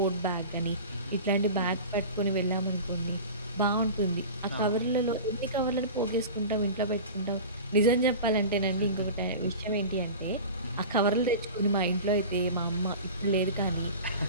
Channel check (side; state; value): both; inverted; correlation -0.34